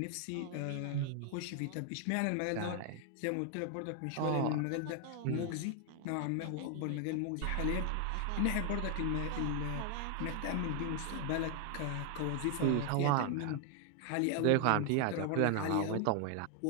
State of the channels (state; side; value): different; both; correlation 0.00